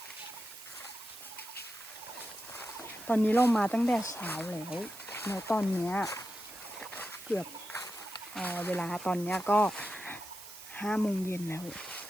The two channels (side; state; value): right; noise; hiss, 14 dB below the sound